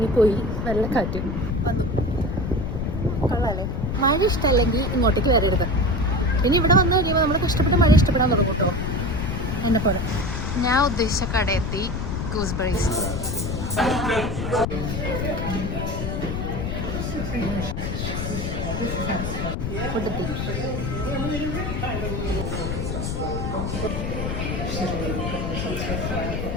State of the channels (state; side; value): noise; left; rumble, 3 dB below the sound